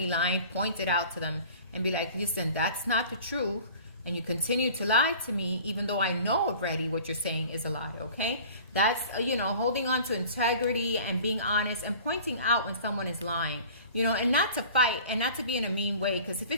lying, point it out to them and be like, listen, that's not the truth. And you continue to lie to me, even though I know already what you're saying is a lie, okay? That's, you know, holding on to integrity and being honest and pointing out when someone is lying, you know, and not to fight and not to be in a mean way. Because if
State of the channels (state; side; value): inverted; both; correlation -0.44